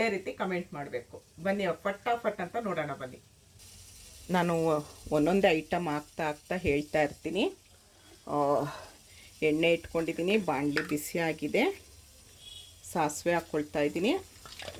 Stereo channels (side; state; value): both; identical; correlation 1.00